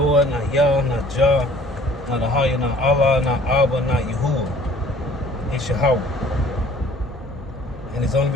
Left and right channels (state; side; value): normal; both; correlation 0.53